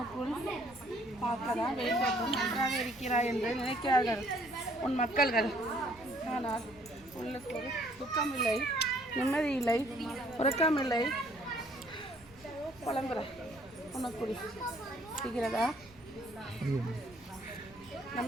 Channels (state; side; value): noise; right; rumble, 24 dB below the sound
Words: பார்க்கதான் வெளித்தோற்றம் நன்றாக இருக்கிறாய் என்று நினைக்கிறார்கள் உன் மக்கள்கள். ஆனால் உள்ளுக்குள் துக்கமில்லை, நிம்மதி இல்லை, உறக்கமில்லை, புலம்புற உனக்குள் இருக்கிறதா?